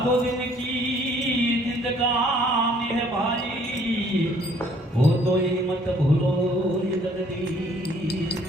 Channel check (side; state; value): both; normal; correlation 0.60